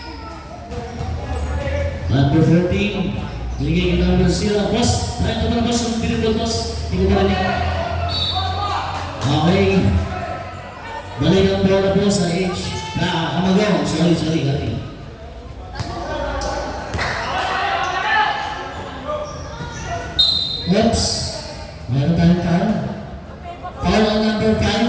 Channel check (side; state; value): both; identical; correlation 1.00